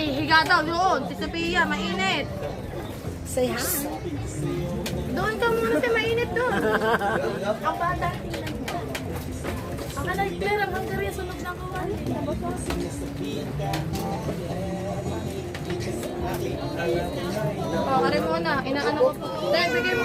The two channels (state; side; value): identical; both; correlation 1.00